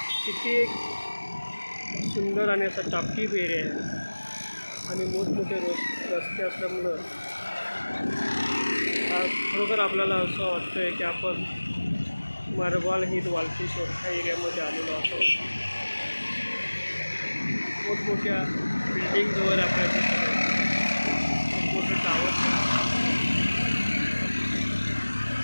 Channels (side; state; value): both; inverted; correlation -1.00